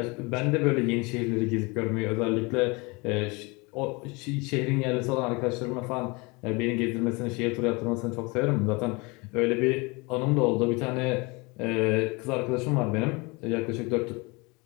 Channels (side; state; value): right; quieter; 27.1 dB